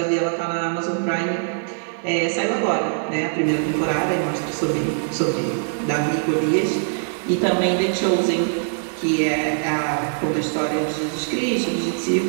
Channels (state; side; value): silent; left; 64 dB below the other